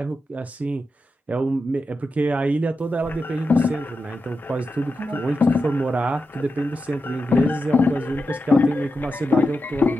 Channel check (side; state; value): both; normal; correlation 0.89